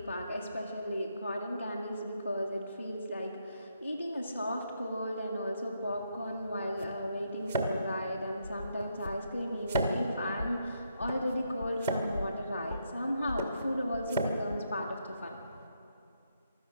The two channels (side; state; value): both; inverted; correlation -0.78